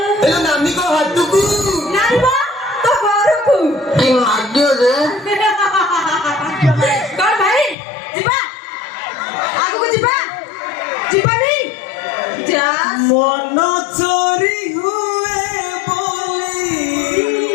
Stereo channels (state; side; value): drops out; right; at 7.8 s